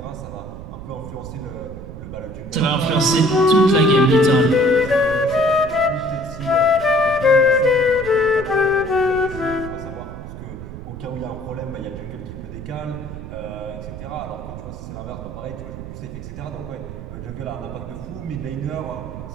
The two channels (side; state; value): right; noise; rumble, 11 dB below the sound